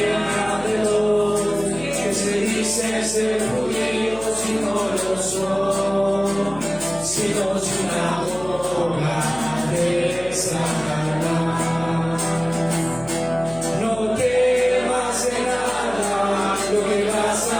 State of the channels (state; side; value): noise; left; hum, 17 dB below the sound